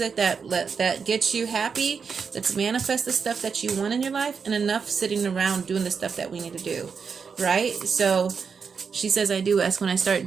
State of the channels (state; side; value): quieter; left; 5.9 dB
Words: that gets you happy. Let's manifest the stuff that you want in your life, and enough sitting around doing the stuff that we need to do. Right? So she says, I do ask when I start